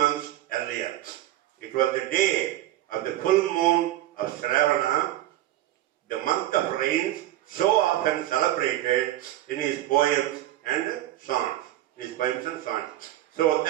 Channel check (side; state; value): left; quieter; 14.3 dB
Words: earlier. It was the day of the full moon of Shravana, the month of rains, so often celebrated in his poems and songs. So